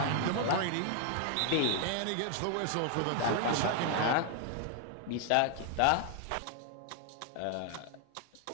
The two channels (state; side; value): different; both; correlation 0.00